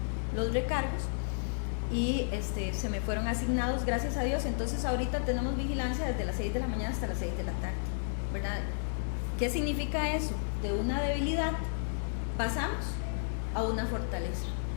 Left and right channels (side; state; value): right; silent; digital silence